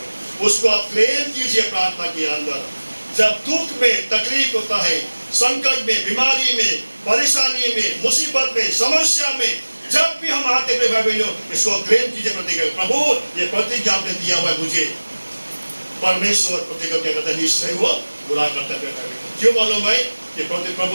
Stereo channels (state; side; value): inverted; both; correlation -1.00